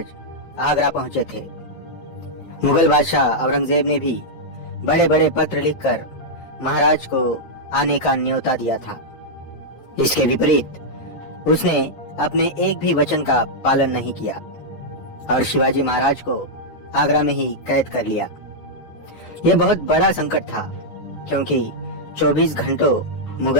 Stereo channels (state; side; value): late; right; 12 ms